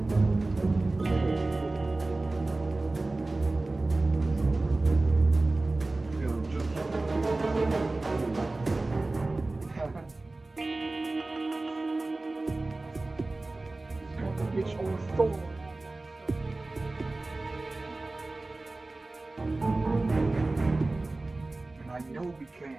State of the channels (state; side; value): quieter; left; 3.1 dB